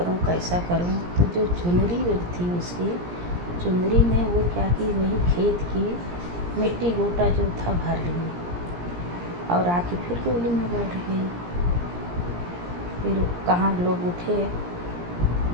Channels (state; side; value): late; left; 17 ms